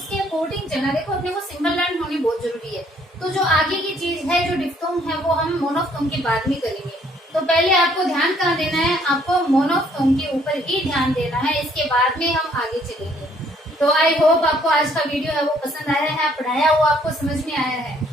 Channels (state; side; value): normal; both; correlation 0.63